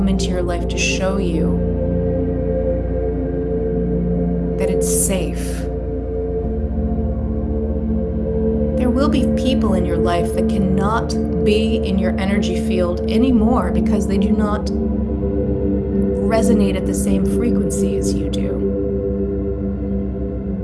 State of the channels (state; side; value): identical; both; correlation 1.00